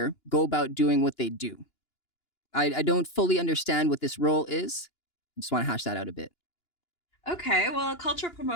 go about doing what they do? I don't fully understand what this role is. I just want to hash that out a bit. Okay, well, a culture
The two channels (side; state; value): right; late; 2.9 ms